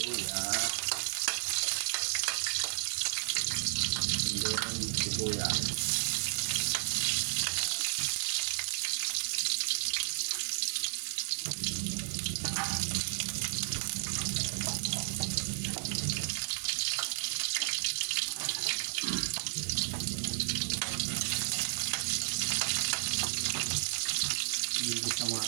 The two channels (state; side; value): silent; left; digital silence